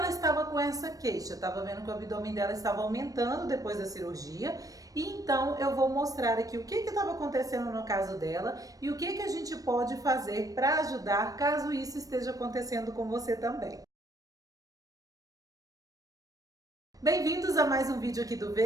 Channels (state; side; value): late; left; 0.17 ms